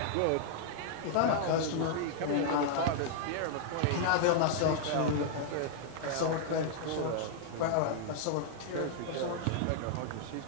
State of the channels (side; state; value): both; different; correlation -0.01